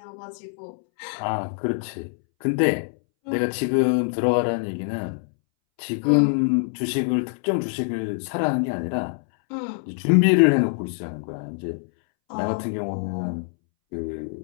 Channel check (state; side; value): silent; right; 62 dB below the other